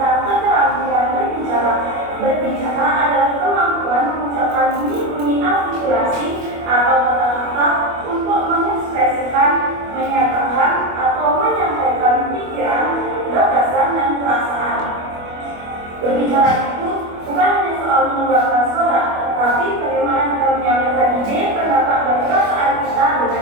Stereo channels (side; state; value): left; late; 25 ms